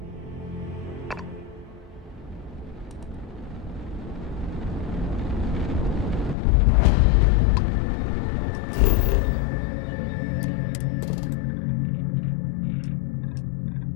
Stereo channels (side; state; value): right; drops out; at 6.4 s